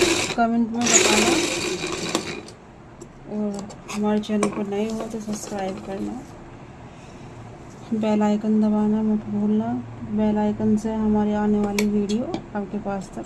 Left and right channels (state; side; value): identical; both; correlation 1.00